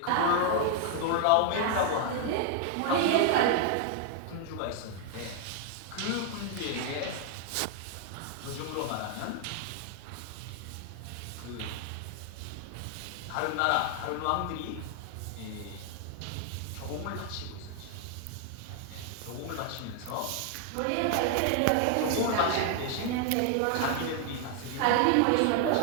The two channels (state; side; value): different; both; correlation 0.00